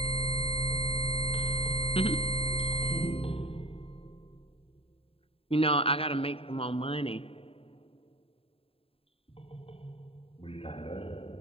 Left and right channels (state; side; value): late; right; 0.27 ms